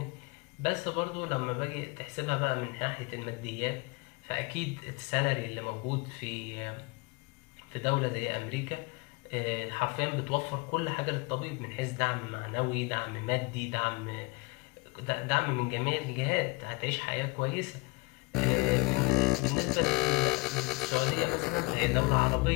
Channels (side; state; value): right; quieter; 26.1 dB